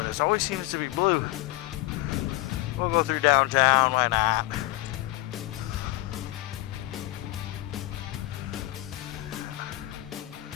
it always seems to be blue. We'll go through downtown, why not?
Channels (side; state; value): right; quieter; 19.0 dB